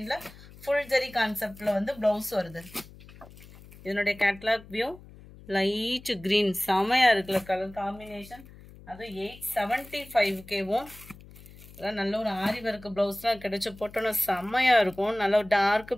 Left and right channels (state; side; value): noise; left; hum, 20 dB below the sound